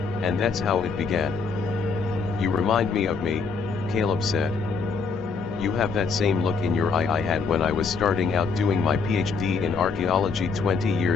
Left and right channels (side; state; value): right; quieter; 4.9 dB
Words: And that's how it began. "You remind me of me," Caleb said. "You have that same look in your eye I had when I was starting out doing my PhD in archaeology 20